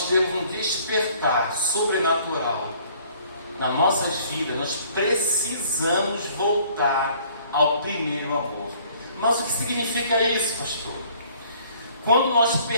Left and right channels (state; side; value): inverted; both; correlation -0.57